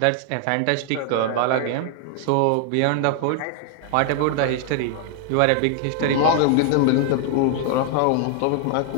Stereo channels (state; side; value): different; both; correlation 0.00